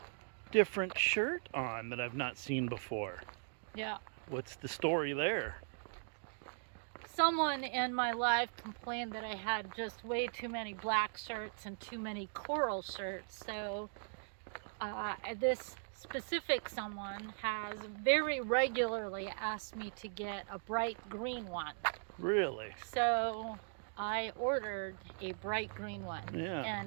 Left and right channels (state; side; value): silent; left; digital silence